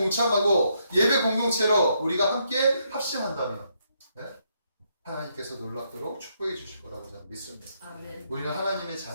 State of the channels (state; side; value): inverted; both; correlation -0.76